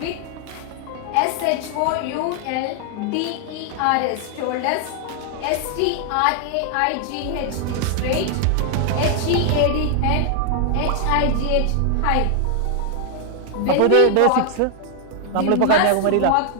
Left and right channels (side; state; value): both; different; correlation 0.00